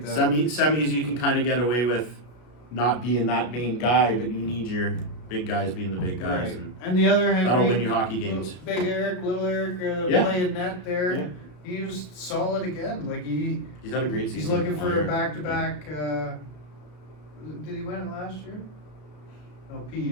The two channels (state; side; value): late; right; 33 ms